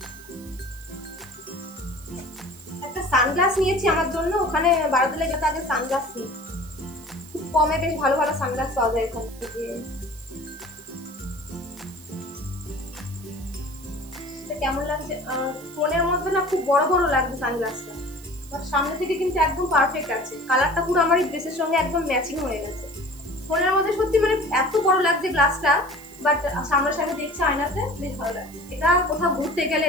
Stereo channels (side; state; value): right; noise; hiss, 21 dB below the sound